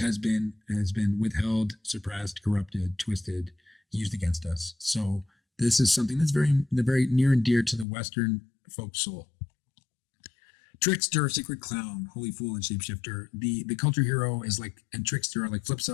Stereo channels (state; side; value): drops out; right; at 7.9 s